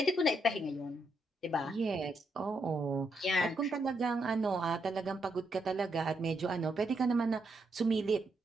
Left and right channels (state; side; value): normal; both; correlation 0.80